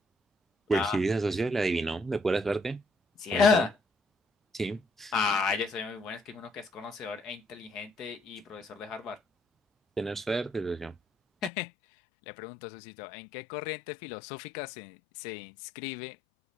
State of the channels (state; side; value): drops out; right; at 11.5 s